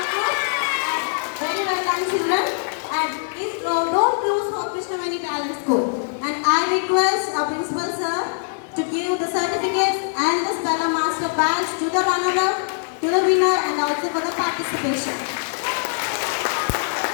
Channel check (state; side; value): silent; right; 62 dB below the other